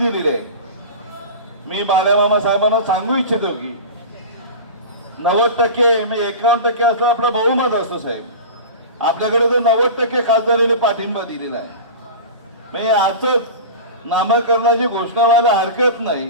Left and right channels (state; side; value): inverted; both; correlation -0.31